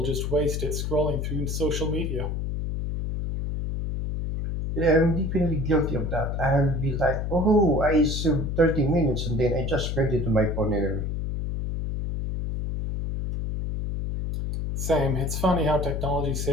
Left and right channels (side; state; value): left; noise; hum, 2 dB below the sound